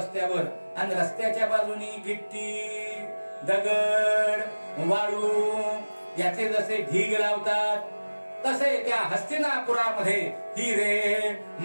आणि रस्त्याच्या बाजूनी गिट्टी, दगड, वाळू याचे जसे ढीग लावतात तसे त्या हस्तिनापुरामध्ये हिरे,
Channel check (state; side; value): inverted; both; correlation -1.00